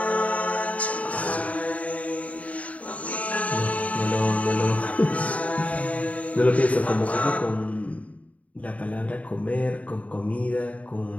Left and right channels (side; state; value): right; late; 0.068 ms